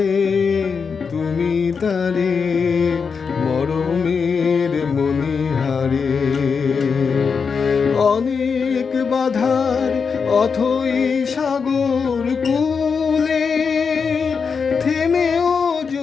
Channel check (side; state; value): right; quieter; 5.6 dB